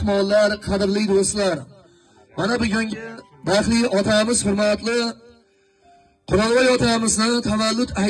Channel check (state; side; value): identical; both; correlation 1.00